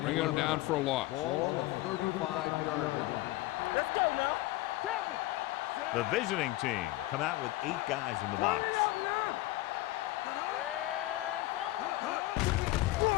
bringing them down for a loss. Ball on the 35-yard line. Let's go now. Temple. The visiting team come out with 8 guys in the box.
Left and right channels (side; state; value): right; quieter; 18.0 dB